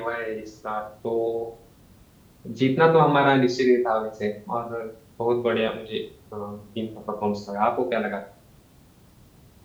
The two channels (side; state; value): both; identical; correlation 1.00